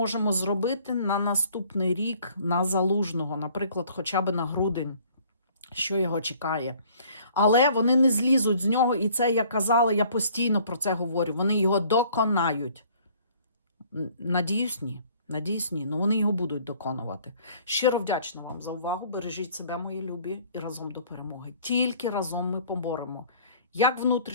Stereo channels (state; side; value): inverted; both; correlation -0.57